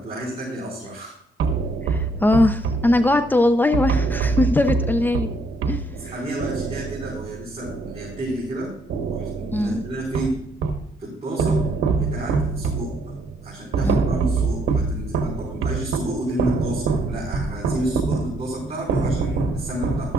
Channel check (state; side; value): normal; both; correlation 0.70